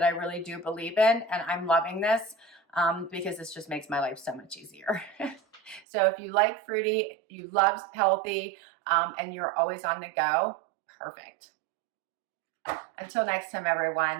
I really do believe in, and I'm loving this because this just makes my life so much easier. So if you like fruity, you love healthy, and you're always on the go, perfect. Until next time,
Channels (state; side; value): drops out; left; at 5.9 s